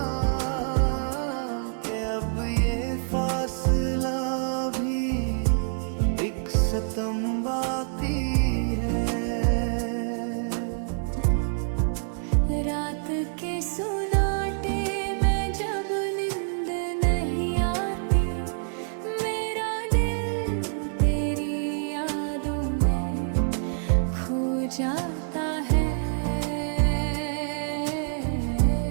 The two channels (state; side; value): silent; left; digital silence